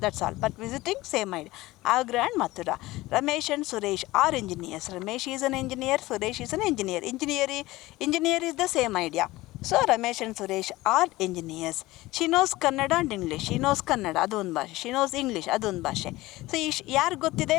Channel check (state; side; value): quieter; right; 18.7 dB